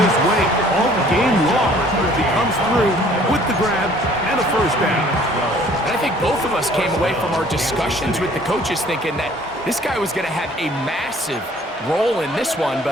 way all game long. He comes through with the grab and a first down. And I think both of us came away from our discussions with the coaches thinking that this guy was going to have a massive role in this one,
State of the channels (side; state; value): both; normal; correlation 0.55